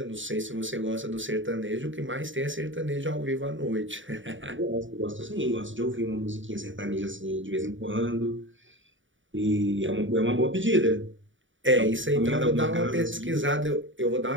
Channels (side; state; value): left; late; 0.56 ms